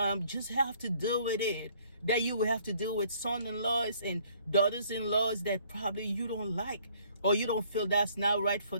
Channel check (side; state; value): both; inverted; correlation -0.61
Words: just have to deal with it. That you will have to deal with son-in-laws and daughters-in-laws that probably you don't like, or you don't feel that's not right for